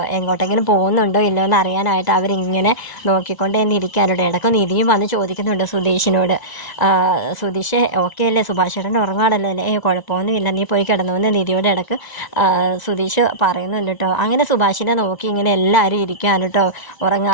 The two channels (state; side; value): late; right; 1.0 ms